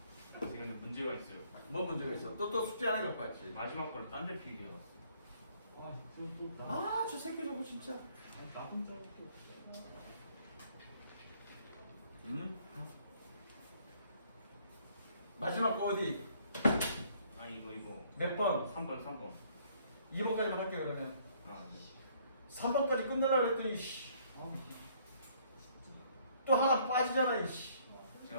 지금 문제가 있어요. 뭐 문제가 있어? 또 숙제 안 해갖고 왔지. 마지막 거를 딴 데 필기해 놨어. 아 저 새끼 저거 진짜. 나 혼자 또. 마지막 거 어디? 아 이거 몇 번? 3번 2번까지만 할게 그러면. 아 네. 3번까지 끝내려고 했더니 씨. 아, 또 하나 빠지잖아 이씨.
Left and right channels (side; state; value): both; inverted; correlation -0.63